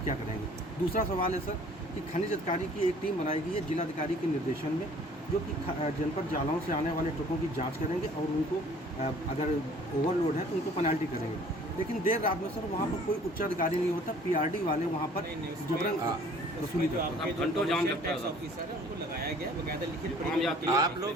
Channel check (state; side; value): normal; both; correlation 0.53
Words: करेंगे? दूसरा सवाल है सर कि खनिज अधिकारी की एक टीम बनाई गई है जिलाधिकारी के निर्देशन में, जो कि जनपद जालौन से आने वाले ट्रकों की जांच करेंगे और उनको अगर ओवरलोड है तो उनको पेनल्टी करेंगे। लेकिन देर रात में सर वहाँ पर कोई उच्च अधिकारी नहीं होता, PRD वाले वहाँ पर जबरन वसूली जो करते हैं। आपके घंटों जाम लगता है। ऑफिसर है उनको लगाया गया बकायदा लिखित आम यात्री आप